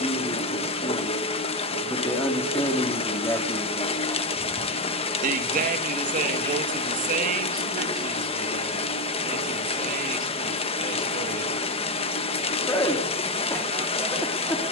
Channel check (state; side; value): normal; both; correlation 0.10